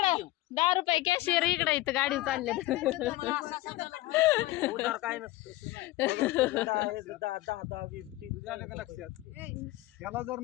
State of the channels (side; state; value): right; quieter; 17.7 dB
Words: 10 रुपये कॅशियर इकडे इथं गाडी चालले. उधार काय नसतं. 10 20 झालं का लक्षात याला जर